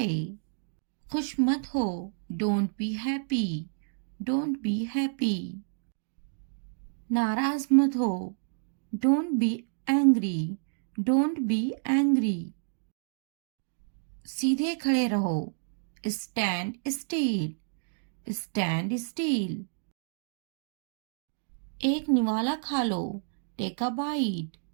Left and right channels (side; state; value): left; silent; digital silence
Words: खुश मत हो, don't be happy, don't be happy. नाराज मत हो, don't be angry, don't be angry. सीधे खड़े रहो, स्टैंड स्टील, स्टैंड स्टील। एक निवाला खा लो, take a bite,